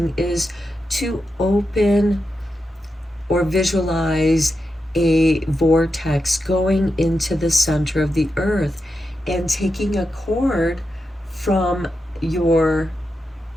is to open or visualize a vortex going into the center of the earth and taking a cord from your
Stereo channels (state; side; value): normal; both; correlation 0.88